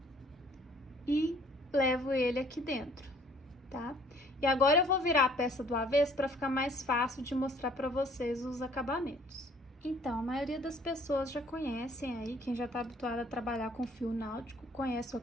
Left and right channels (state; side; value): normal; both; correlation 0.58